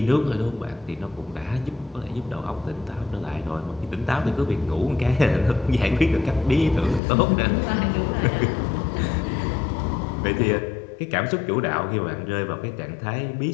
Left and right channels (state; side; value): drops out; right; at 7.0 s